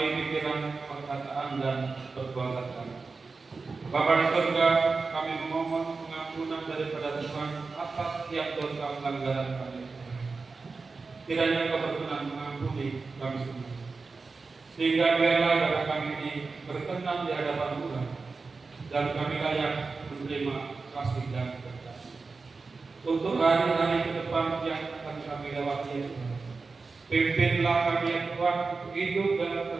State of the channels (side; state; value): left; quieter; 4.2 dB